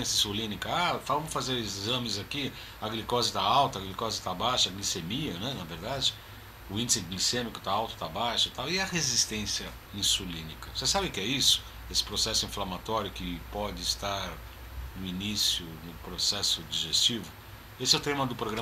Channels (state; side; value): identical; both; correlation 1.00